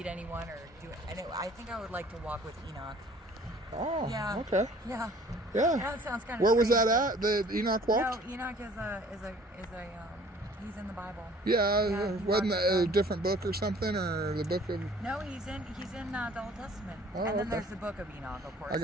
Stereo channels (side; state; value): both; normal; correlation 0.53